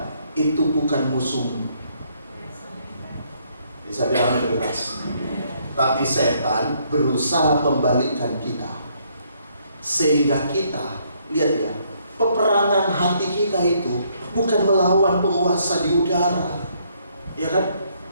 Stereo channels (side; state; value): both; inverted; correlation -0.69